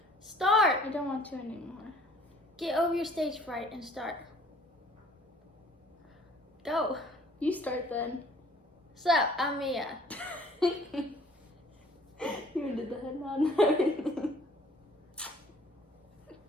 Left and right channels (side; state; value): both; normal; correlation 0.55